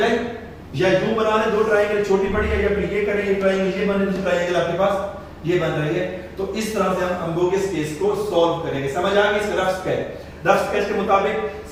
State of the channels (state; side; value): identical; both; correlation 1.00